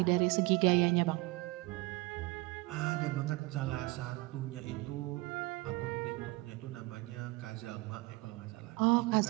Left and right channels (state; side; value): quieter; left; 22.4 dB